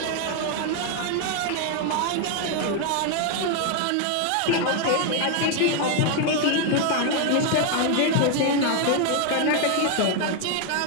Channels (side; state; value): both; different; correlation 0.01